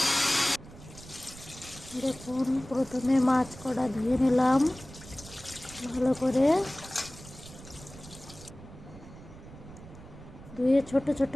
দেখুন, প্রথমে মাছ কটা ধুয়ে নিলাম ভালো করে। ধুয়ে ছোট ছোট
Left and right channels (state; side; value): noise; right; rumble, 17 dB below the sound